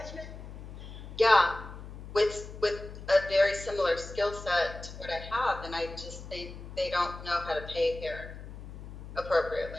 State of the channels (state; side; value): noise; left; hum, 12 dB below the sound